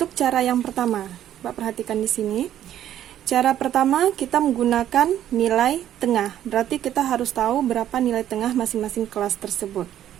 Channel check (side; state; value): left; quieter; 11.4 dB